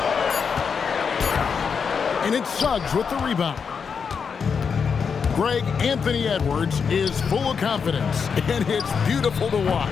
And it's Suggs with the rebound. Greg, Anthony Edwards is full of confidence, and it's beautiful to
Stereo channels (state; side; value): quieter; right; 6.1 dB